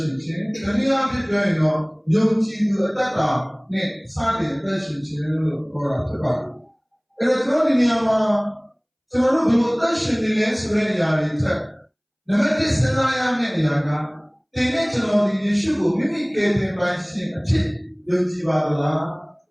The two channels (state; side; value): identical; both; correlation 1.00